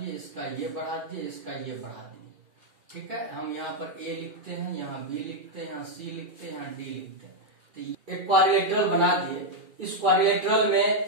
इसका ये बढ़ा दिए, इसका ये बढ़ा दिए, ठीक है। हम यहाँ पर ए लिखते हैं, यहाँ बी लिखते हैं, यहाँ सी लिखते हैं, यहाँ डी लिखते हैं। तो एक क्वाड्रिलेटरल बना दिए। इस क्वाड्रिलेटरल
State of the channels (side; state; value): left; late; 2.4 ms